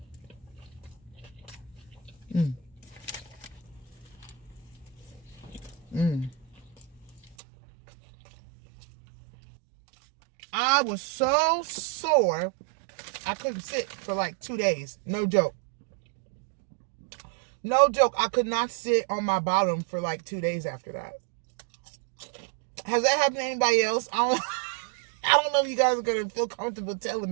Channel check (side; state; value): left; drops out; at 7.4 s